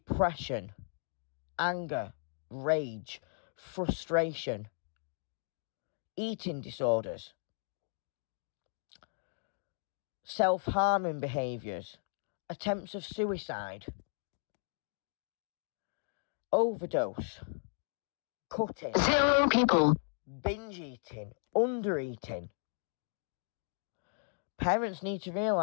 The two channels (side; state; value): right; silent; digital silence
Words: anger, rage, frustration, eating disorders, self-harming behaviours, attempts of suicide, overdose, cutting, 0 people, binge eating, under eating. Parents need to